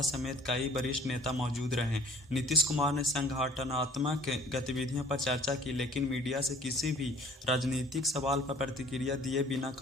समेत कई वरिष्ठ नेता मौजूद रहे। नीतीश कुमार ने संगठनात्मक गतिविधियों पर चर्चा की, लेकिन मीडिया से किसी भी राजनीतिक सवाल पर प्रतिक्रिया दिए बिना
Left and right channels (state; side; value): normal; both; correlation 0.52